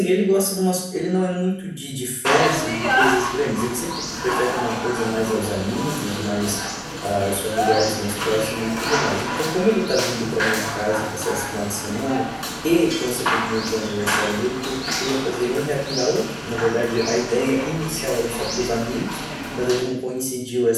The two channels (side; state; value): both; identical; correlation 1.00